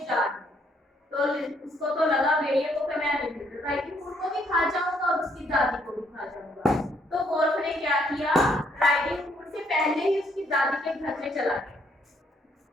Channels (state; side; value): normal; both; correlation 0.69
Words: जा रही हूँ। तो उसको तो लगा भेड़िए को कि मैं राइडिंग हुड को भी खा जाऊंगा और उसकी दादी को भी खा जाऊंगा। तो गोल्फ ने क्या किया, राइडिंग हुड से पहले ही उसकी दादी के घर में चला गया।